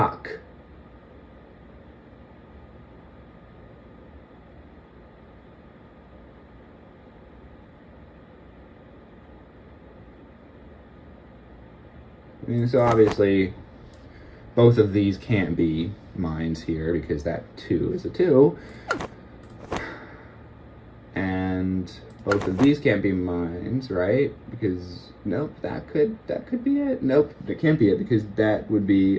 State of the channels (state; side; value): identical; both; correlation 1.00